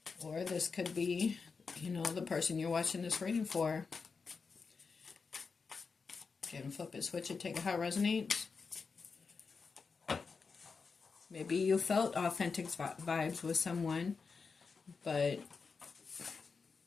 Or this could be, you know, the person you're watching this reading for. Again, flip it, switch it, take it how it resonates. Maybe you felt authentic vibes with someone, but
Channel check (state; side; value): quieter; right; 5.0 dB